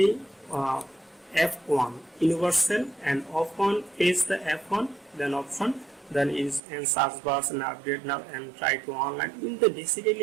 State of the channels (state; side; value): drops out; left; at 6.6 s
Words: F1 universal and F1 is the F1 then option, then is and search bars and update now and try to online in the